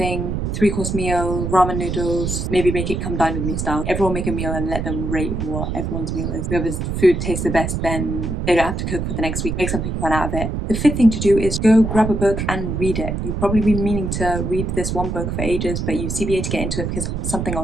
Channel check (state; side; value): noise; right; rumble, 2 dB below the sound